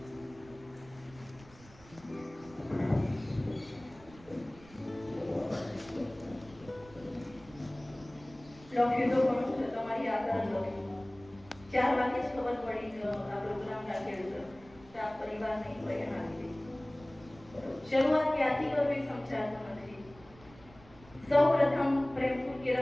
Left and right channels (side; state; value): right; noise; rumble, 22 dB below the sound